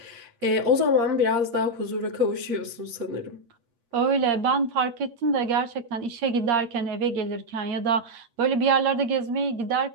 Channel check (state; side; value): late; left; 8.5 ms